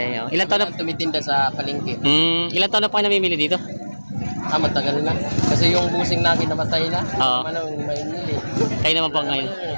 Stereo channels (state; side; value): inverted; both; correlation -1.00